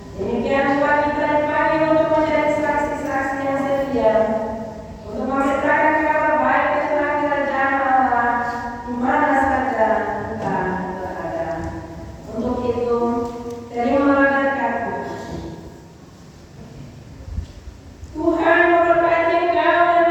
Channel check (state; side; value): identical; both; correlation 1.00